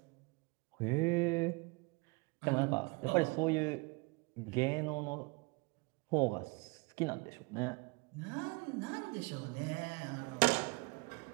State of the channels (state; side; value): quieter; left; 27.4 dB